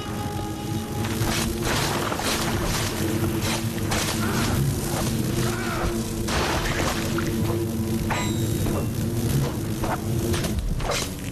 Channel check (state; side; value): identical; both; correlation 1.00